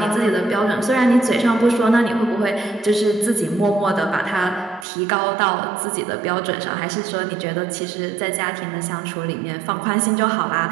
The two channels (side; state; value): left; drops out; at 4.9 s